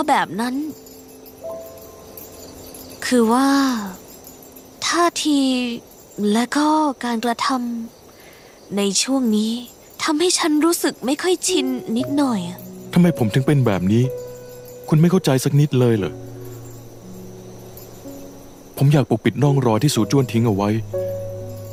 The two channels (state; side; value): identical; both; correlation 1.00